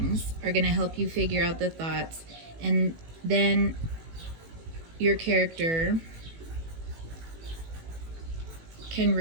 are going to help you figure out the thoughts, and then your character can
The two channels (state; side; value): late; left; 18 ms